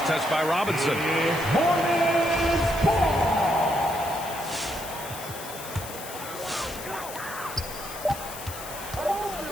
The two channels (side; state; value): left; noise; hiss, 12 dB below the sound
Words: touch by Robinson.